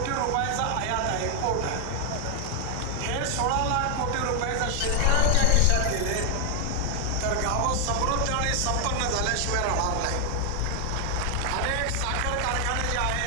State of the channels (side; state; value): both; different; correlation 0.00